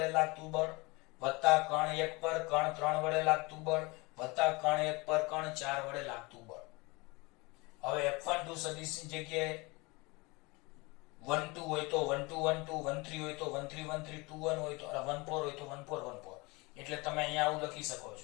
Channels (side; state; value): right; quieter; 25.5 dB